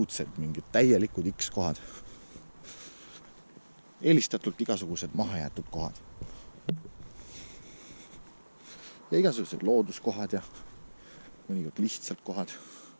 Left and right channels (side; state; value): both; inverted; correlation -1.00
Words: mingid täielikud X kohad. Eelistatult igasugused mahajäetud kohad. Ja igasugused looduskohad ja mõnikord lihtsalt kohad.